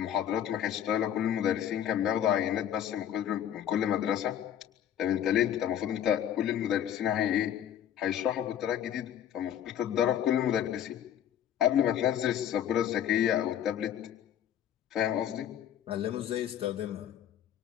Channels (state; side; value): quieter; right; 10.2 dB